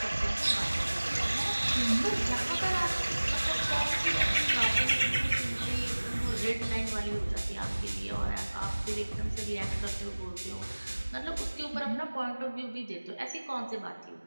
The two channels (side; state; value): both; inverted; correlation -1.00